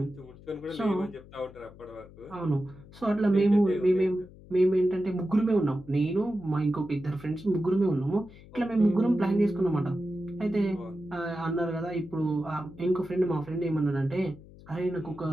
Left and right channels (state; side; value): noise; left; hum, 20 dB below the sound